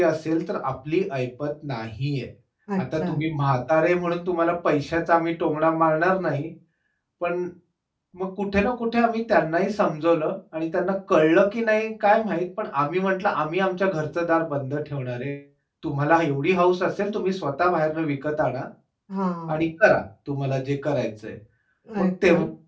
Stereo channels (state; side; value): identical; both; correlation 1.00